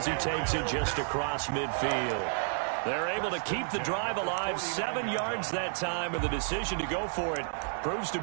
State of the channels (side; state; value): left; silent; digital silence